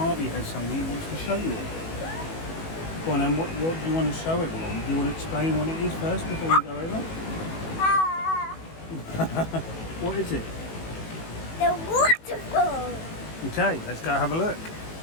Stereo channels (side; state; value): right; late; 18 ms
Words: has something he wants to show you all. Go on, then, what do you want to show everyone? Do you want to explain what it is first before we go over? What is it? The waterfall. Okay, let's go have a look.